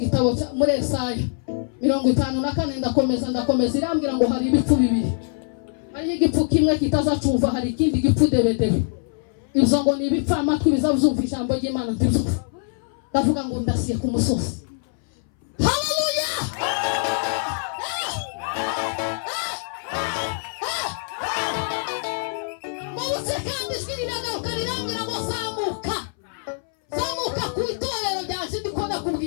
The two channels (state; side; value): silent; right; 60 dB below the other